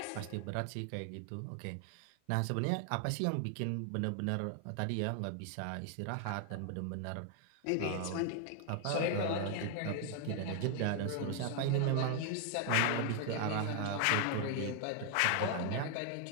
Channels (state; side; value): different; both; correlation 0.00